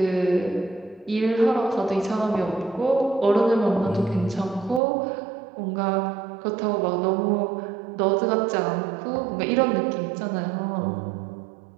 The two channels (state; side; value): drops out; left; at 4.8 s